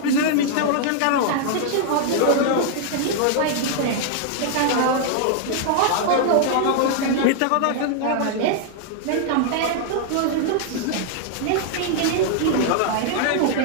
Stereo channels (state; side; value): different; both; correlation 0.00